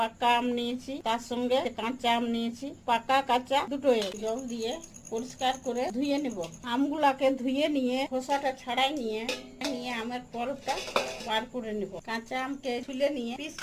আম নিয়েছি, তার সঙ্গে কাঁচা আম নিয়েছি। পাকা কাঁচা দুটোই জল দিয়ে পরিষ্কার করে ধুয়ে নিব। আমগুলাকে ধুয়ে নিয়ে খোসাটা ছাড়াই নিয়ে আমের পল্পটা বার করে নিব। কাঁচা আমকে ছুলে নিয়ে পিস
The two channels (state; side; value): identical; both; correlation 1.00